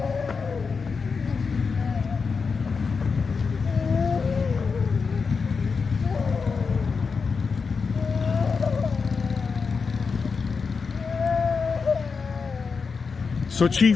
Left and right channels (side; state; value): right; quieter; 5.1 dB